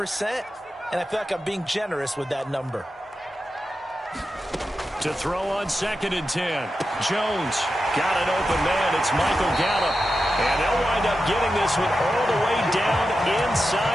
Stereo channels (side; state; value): both; normal; correlation 0.90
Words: and I feel like I'm being generous with that number. To throw on 2nd and 10. Jones got an open man. It's Michael Gallup. And they'll wind up getting this one all the way down